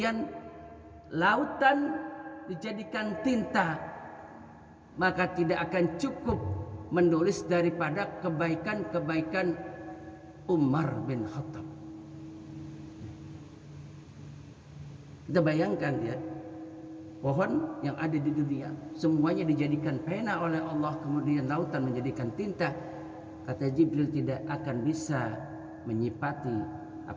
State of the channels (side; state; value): both; identical; correlation 1.00